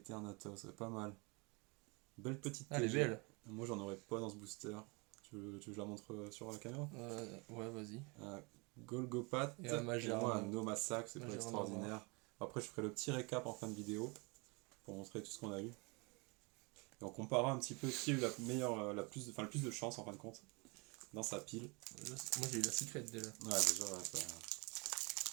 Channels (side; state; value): left; quieter; 29.3 dB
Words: c'est pas mal. Belle petite Ah, elle est TG. belle. Moi, j'en aurais pas dans ce booster. Tu veux que je la montre sur la caméra? Ouais, vas-y. Un Golgopat Et un Magearma. moi un Nomasac, c'est pas Magearma. extraordinaire. Après, je ferai le petit récap en fin de vidéo pour montrer tout ce qu'on a eu. Et on comparera un petit peu qui a eu la meilleure, le plus de chance en fin de compte dans sa pile. Moi j'ai eu la secret déjà. Ouais, déjà, ouais,